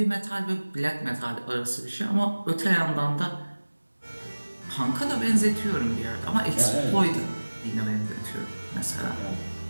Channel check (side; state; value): both; inverted; correlation -1.00